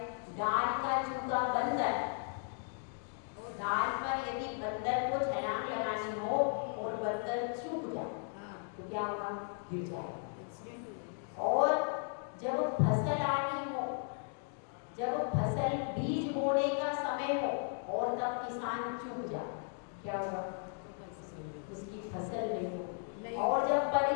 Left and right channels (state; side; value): silent; right; 54 dB below the other